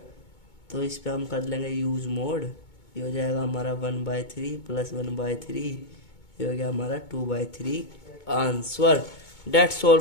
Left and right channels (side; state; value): right; late; 2.2 ms